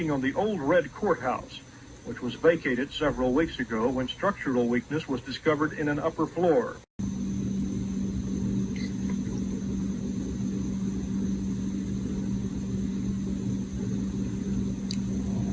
on the old red courthouse, which was vacated several weeks ago when structural weakness was discovered in an upper floor.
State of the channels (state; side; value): identical; both; correlation 1.00